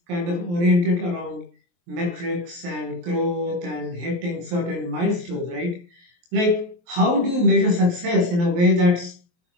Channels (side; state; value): left; late; 23 ms